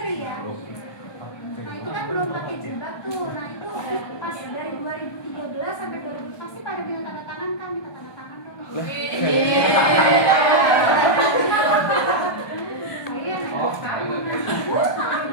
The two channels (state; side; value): late; right; 1.2 ms